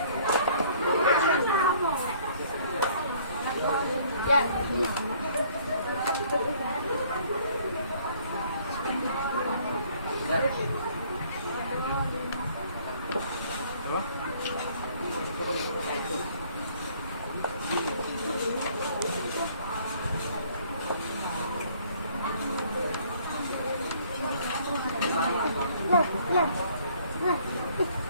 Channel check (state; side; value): inverted; both; correlation -0.59